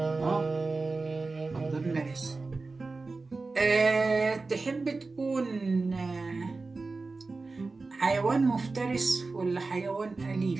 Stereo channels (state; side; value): quieter; left; 3.7 dB